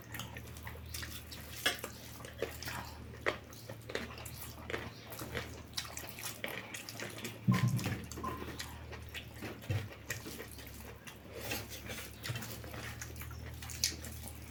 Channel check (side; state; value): both; identical; correlation 1.00